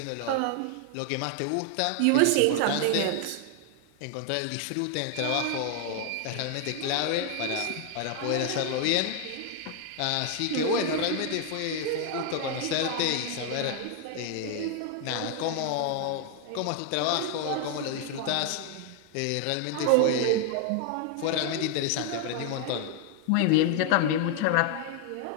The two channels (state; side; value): different; both; correlation 0.00